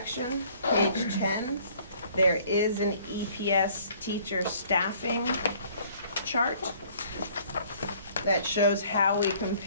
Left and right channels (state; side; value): inverted; both; correlation -0.57